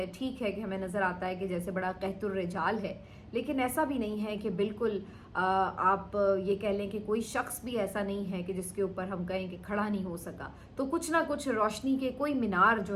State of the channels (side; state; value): both; identical; correlation 1.00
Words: ठीक है कि हमें नज़र आता है कि जैसे बड़ा कहतुर रिजाल है, लेकिन ऐसा भी नहीं है कि बिल्कुल आप ये कह लें कि कोई शख्स भी ऐसा नहीं है कि जिसके ऊपर हम कहें कि खड़ा नहीं हो सका। तो कुछ ना कुछ रोशनी के कोई मीनार